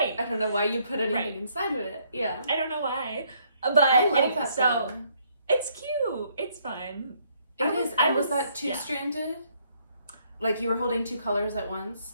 I don't know why you put anything Right. inside of it. Yeah. I don't know why. But I love anyway, that so though. it's cute. It's fun. It is. And was that yeah. 2-stranded? Like you were holding 2 colors at once?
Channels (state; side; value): inverted; both; correlation -0.68